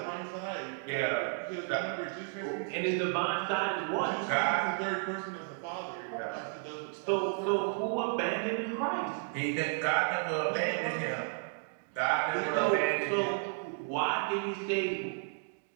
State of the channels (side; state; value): left; silent; 56 dB below the other